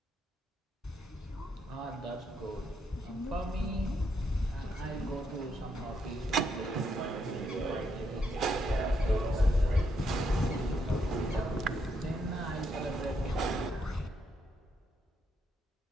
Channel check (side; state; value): both; normal; correlation 0.77